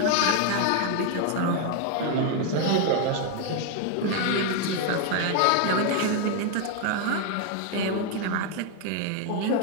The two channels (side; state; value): both; different; correlation 0.01